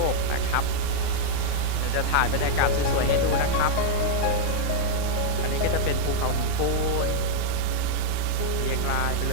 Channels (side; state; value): both; different; correlation -0.01